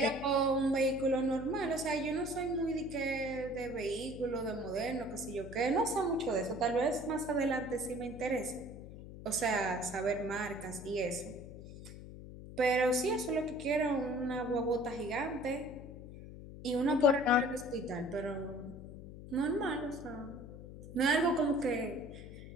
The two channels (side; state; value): left; noise; hum, 13 dB below the sound